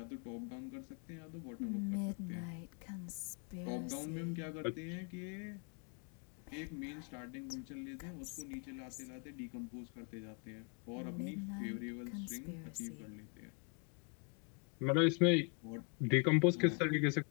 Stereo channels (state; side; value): quieter; right; 38.1 dB